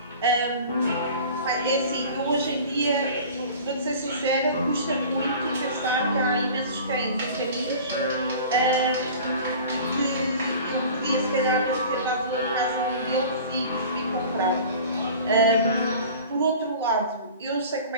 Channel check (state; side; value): inverted; both; correlation -0.41